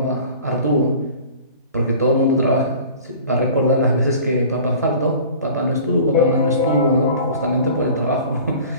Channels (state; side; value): inverted; both; correlation -0.44